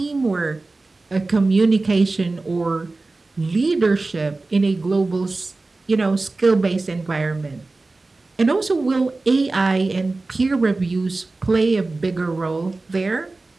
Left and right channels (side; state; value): left; quieter; 3.4 dB